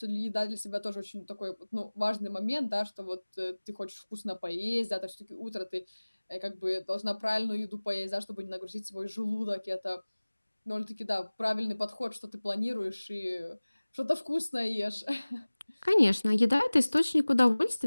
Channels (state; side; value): inverted; both; correlation -1.00